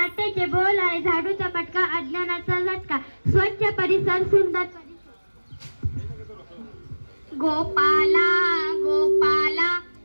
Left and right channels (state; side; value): inverted; both; correlation -1.00